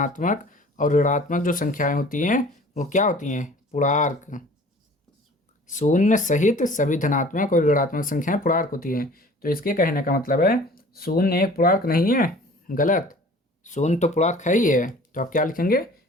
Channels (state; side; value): normal; both; correlation 0.47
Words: और ऋणात्मक जो संख्याएं होती हैं वो क्या होती हैं पूर्णांक। शून्य सहित सभी धनात्मक और ऋणात्मक संख्याएं पूर्णांक होती हैं। तो इसके कहने का मतलब है शून्य एक पूर्णांक नहीं है, गलत, शून्य तो पूर्णांक है ही है। तो आप क्या लिखेंगे,